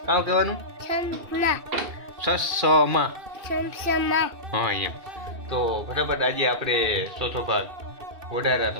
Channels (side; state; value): left; late; 2.6 ms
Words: કામ કહેવાનું સસમા હા એમ તો ફટાફટ આજે આપણે ચોથો ભાગ